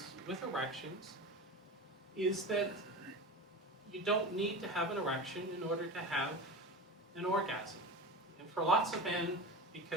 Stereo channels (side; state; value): both; normal; correlation 0.28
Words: with erections is that you don't need to have an erection in order to have an orgasm. And for lots of men,